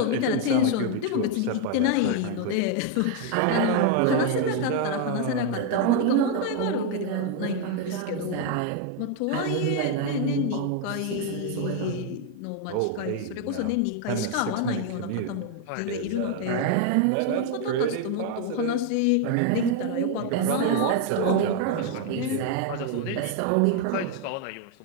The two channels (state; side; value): different; both; correlation 0.01